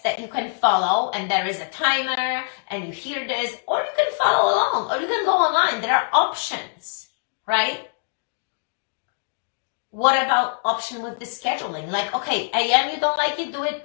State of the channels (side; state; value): right; silent; digital silence